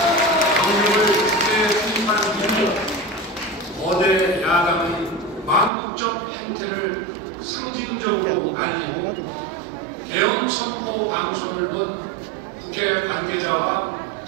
병력을 국회에 투입하는 이유로 거대 야당의 망국적 행태를 상징적으로 알리고 대응 선포 방송을 본 국회 관계자와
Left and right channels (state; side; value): drops out; left; at 5.7 s